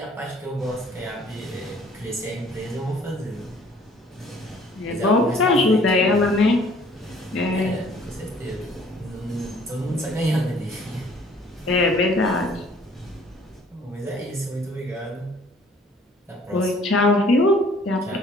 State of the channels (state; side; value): normal; both; correlation 0.56